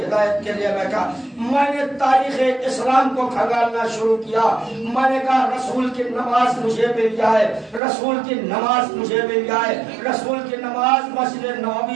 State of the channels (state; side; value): drops out; left; at 7.8 s